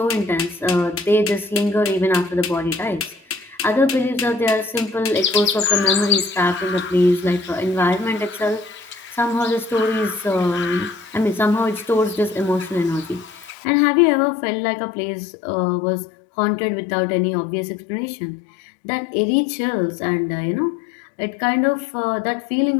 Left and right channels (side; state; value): right; drops out; at 13.6 s